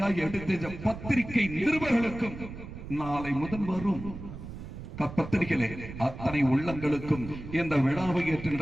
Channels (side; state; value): right; noise; rumble, 11 dB below the sound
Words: எடுத்த பத்திரிகை நிருபர்களுக்கும் நாளை முதல் வரும் பத்திரிகையிலே அத்தனை உள்ளங்களுக்கும் இந்த விழாவை ஏற்று